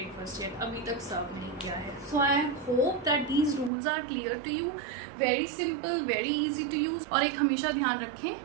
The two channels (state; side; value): drops out; left; at 3.7 s